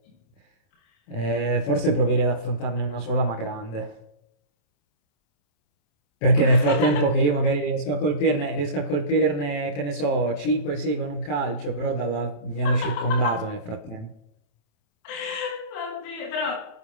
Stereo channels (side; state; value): right; late; 27 ms